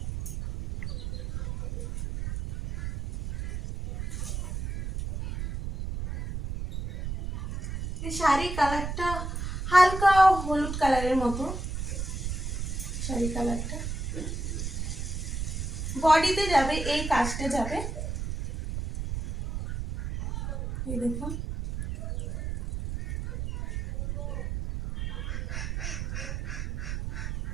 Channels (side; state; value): right; noise; rumble, 4 dB below the sound